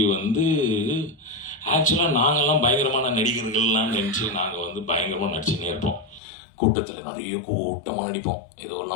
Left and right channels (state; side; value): drops out; right; at 6.2 s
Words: வந்து ஆக்சுவலாக நாங்கள்லாம் பயங்கரமான நடிகர்கள்லாம் நினச்சி நாங்கள் வந்து பயங்கரமாக நடிச்சுன்னே இருப்போம். கூட்டத்தில் நிறைய கூட்டமாக நடிப்போம்,